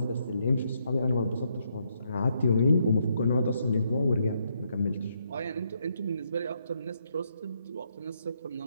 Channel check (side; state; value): both; inverted; correlation -0.76